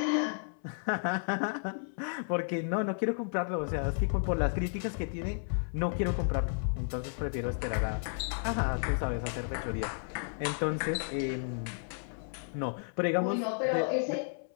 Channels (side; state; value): right; silent; 56 dB below the other